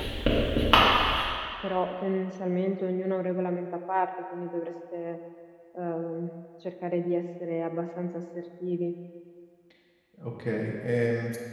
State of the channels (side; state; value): both; identical; correlation 1.00